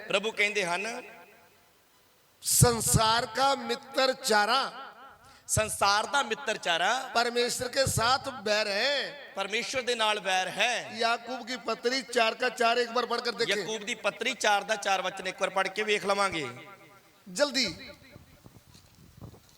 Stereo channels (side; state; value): both; identical; correlation 1.00